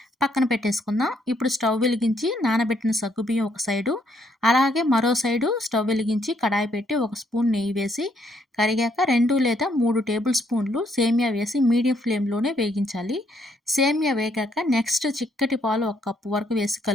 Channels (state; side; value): normal; both; correlation 0.71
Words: పక్కన పెట్టేసుకుందాం. ఇప్పుడు స్టవ్ వెలిగించి నానబెట్టిన సగ్గుబియ్యం ఒక సైడు, అలాగే మరో సైడు స్టవ్ వెలిగించి కడాయి పెట్టి ఒక స్పూన్ నెయ్యి వేసి కరిగాక 2 లేదా 3 టేబుల్ స్పూన్లు సేమియా వేసి మీడియం ఫ్లేమ్‌లోనే వేగించాలి. సేమియా వేగాక నెక్స్ట్ చిక్కటి పాలు ఒక కప్పు వరకు వేసి